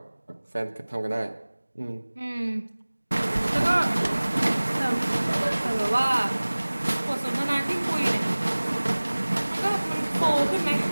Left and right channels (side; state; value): both; inverted; correlation -1.00